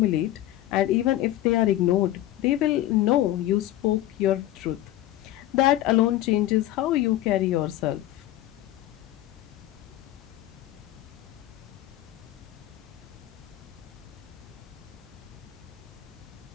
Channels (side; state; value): right; quieter; 14.3 dB